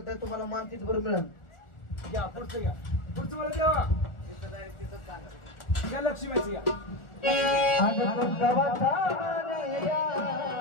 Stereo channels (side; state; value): right; late; 1.4 ms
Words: नाही, तुम्हाला मान तिथभर मिळेल. घ्या पुढचं घ्या, पुढचं मला देवा. घ्या लक्ष्मीचं घ्या. अगं तुमचा वाचा या